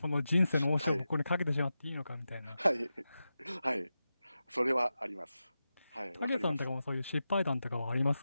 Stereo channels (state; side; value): inverted; both; correlation -0.92